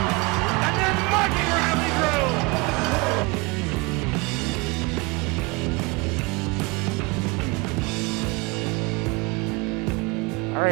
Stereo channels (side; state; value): left; quieter; 26.6 dB